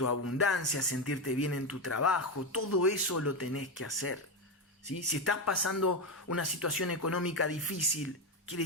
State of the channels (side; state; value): both; normal; correlation 0.10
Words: abundancia, sentirte bien en tu trabajo, todo eso lo tenés que hacer. ¿Sí? Si estás pasando una situación económica difícil, quiere